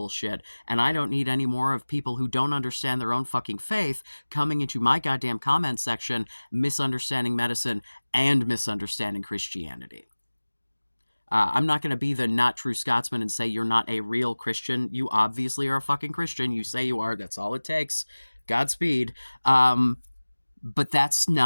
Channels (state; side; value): inverted; both; correlation -1.00